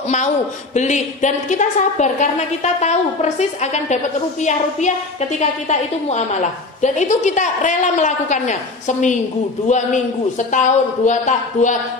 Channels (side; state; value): right; quieter; 3.4 dB